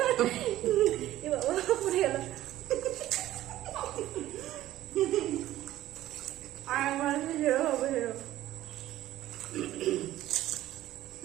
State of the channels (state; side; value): quieter; left; 14.4 dB